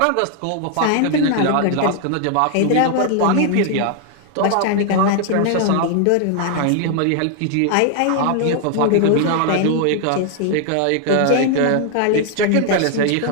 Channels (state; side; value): different; both; correlation 0.00